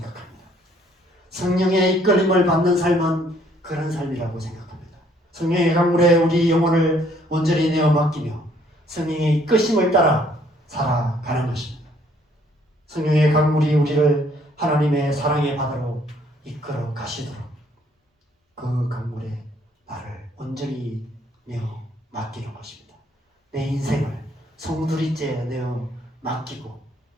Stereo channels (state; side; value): normal; both; correlation 0.64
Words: 성령의 이끌림을 받는 삶은 그런 삶이라고 생각합니다. 성령의 강물에 우리 영혼을 온전히 내어 맡기며 성령의 이끄심을 따라 살아가는 것입니다. 성령의 강물이 우리를 하나님의 사랑의 바다로 이끌어 가시도록 그 강물에 나를 온전히 내어 맡기는 것입니다. 내 인생을 송두리째 내어 맡기고